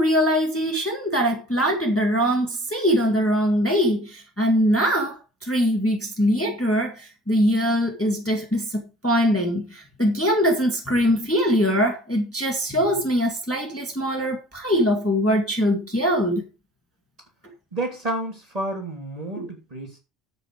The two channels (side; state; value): both; normal; correlation 0.49